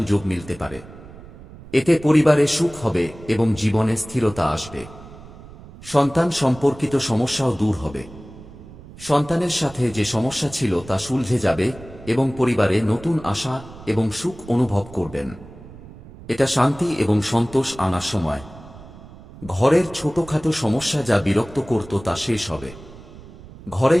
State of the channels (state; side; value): noise; right; rumble, 18 dB below the sound